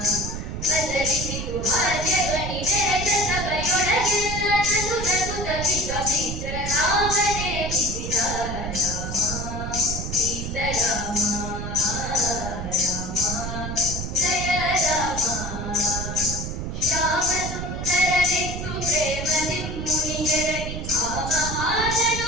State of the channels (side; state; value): right; noise; rumble, 5 dB below the sound